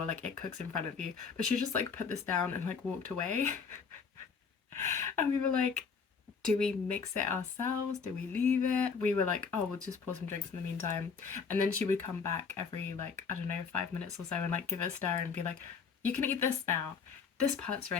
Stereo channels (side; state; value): right; quieter; 5.7 dB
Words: like it cooks in front of you. But she just like put this down and like walked away. And we were like, do we mix it ourselves? Do we leave it? We were like, oh, we'll just pour some drinks in the meantime. And then she would come back every like, I don't know, 5 minutes or so and like give it a stir and be like, you can eat this now. This part's